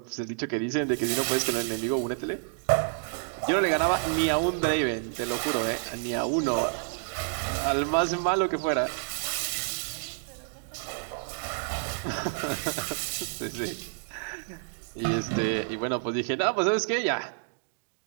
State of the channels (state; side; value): silent; left; 56 dB below the other